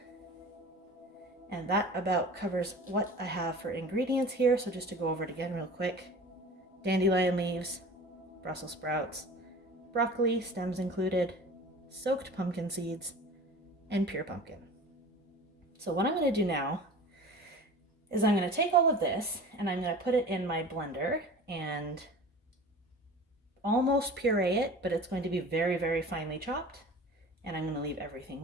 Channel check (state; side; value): normal; both; correlation 0.39